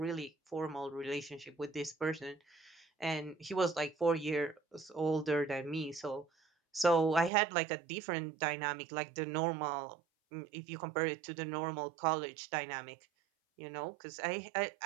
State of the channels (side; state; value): left; drops out; at 7.3 s